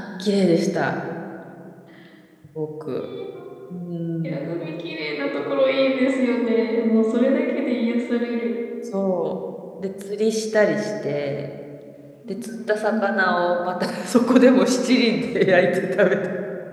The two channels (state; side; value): identical; both; correlation 1.00